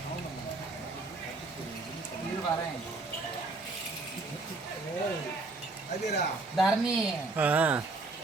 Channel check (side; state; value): left; quieter; 3.4 dB